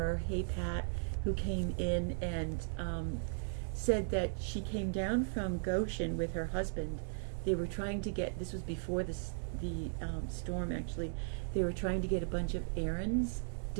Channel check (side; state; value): left; silent; digital silence